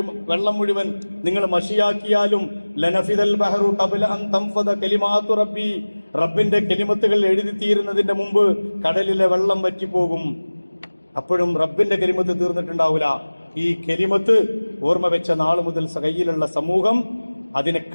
വെള്ളം മുഴുവൻ നിങ്ങൾ മഷിയാക്കിയാലും ലനഫിദൽ ബഹറു ഖബല അൻ തൻഫദ കലിമാതു റബ്ബി, റബ്ബിന്റെ കലിമത്തുകൾ എഴുതി തീരുന്നതിന്റെ മുമ്പ് കടലിലെ വെള്ളം വറ്റിപ്പോകും. അപ്പോഴും റബ്ബിന്റെ കലിമത്ത് തീർന്നിട്ടുണ്ടാവില്ല. ഈ കലിമത്ത് ഓർമ്മ വെച്ച നാൾ മുതൽ കയ്യിലുള്ള സമൂഹം അതിനെ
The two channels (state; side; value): inverted; both; correlation -1.00